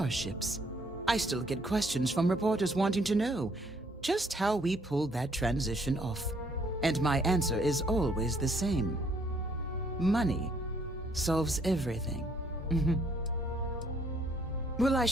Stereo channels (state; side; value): normal; both; correlation 0.66